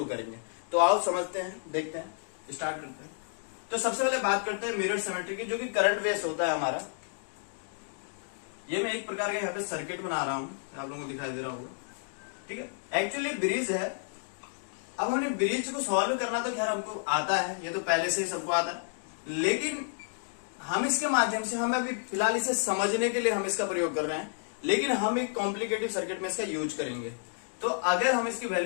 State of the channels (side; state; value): right; silent; digital silence